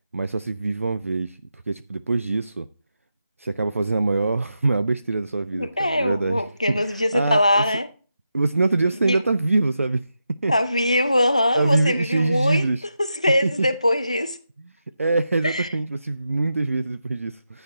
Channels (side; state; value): both; inverted; correlation -0.86